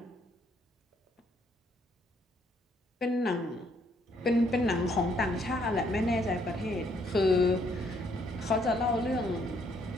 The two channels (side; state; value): both; normal; correlation 0.69